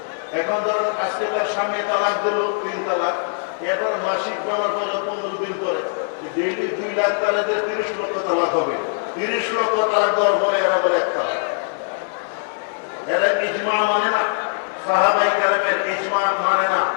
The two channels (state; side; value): silent; right; digital silence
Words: এখন ধরুন আজকে তার স্বামী তালাক দিল 3 তালাক, এরপর মাসিক ব্যবহার করলে 15 দিন পরে ডেইলি 2 লাখ তালাকের 30 লক্ষ তালাক হবে। 30 লক্ষ তালাক দেওয়ার পরে এরা বলে 1 তালাক। এরা ইজমা মানে না, সাহাবায়ে কেরামের ইজমা মানে না।